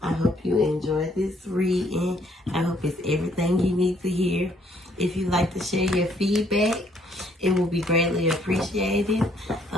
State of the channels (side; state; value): both; normal; correlation 0.66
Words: I hope you enjoyed this reading. I hope it's everything you need to hear. If you'd like to share your feedback, it will be greatly appreciated.